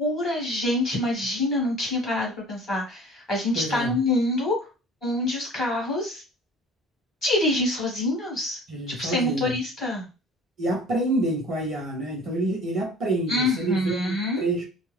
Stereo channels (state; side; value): normal; both; correlation 0.46